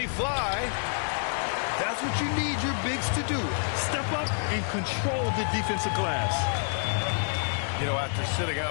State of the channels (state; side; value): silent; right; digital silence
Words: fly. That's what you need your bigs to do. Step up and control the defensive glass. You know, after sitting